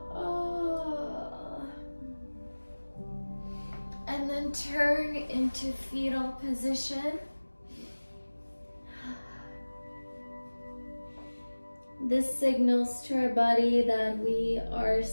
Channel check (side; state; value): both; inverted; correlation -1.00